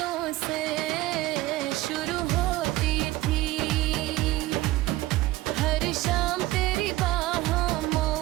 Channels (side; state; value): left; quieter; 17.6 dB